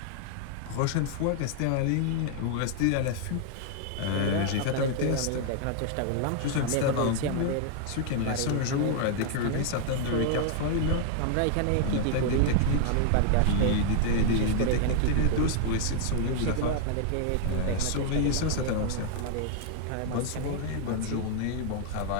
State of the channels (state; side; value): different; both; correlation 0.00